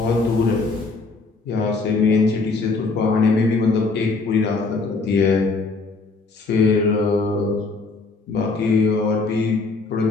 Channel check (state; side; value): quieter; right; 3.9 dB